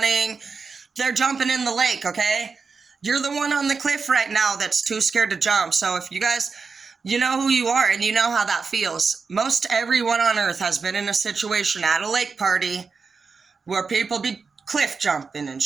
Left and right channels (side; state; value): left; quieter; 4.9 dB